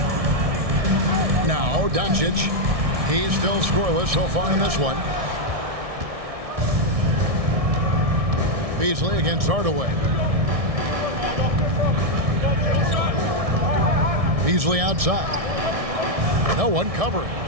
Now Doncic. He's still scoreless so far in this one. Beasley against Hardaway. Beasley outside. No one covering.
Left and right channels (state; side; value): late; left; 1.6 ms